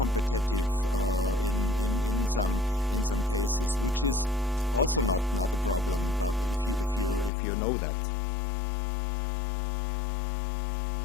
in some cases, which is also not a problem. But if you know that.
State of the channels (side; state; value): right; drops out; at 7.3 s